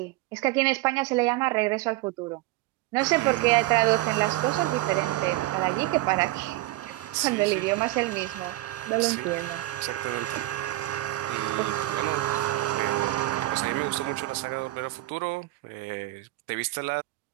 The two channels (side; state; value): left; quieter; 18.4 dB